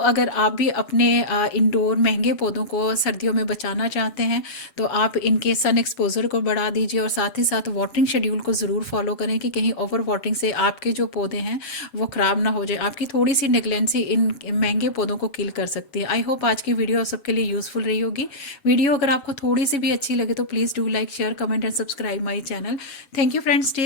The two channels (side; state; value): right; late; 8.2 ms